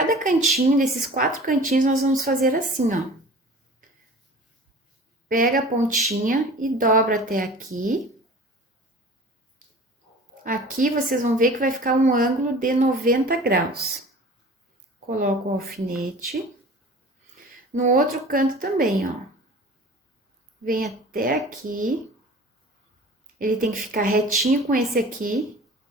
cantinho, desses 4 cantinhos, nós vamos fazer assim, ó. Pega a pontinha e dobra até aqui. Aqui, vocês vão ver que vai ficar um ângulo de 90 graus. Coloco o alfinete. No outro canto também, ó. Vem até aqui. Ele tem que ficar retinho com esse aqui.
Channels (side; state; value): both; normal; correlation 0.42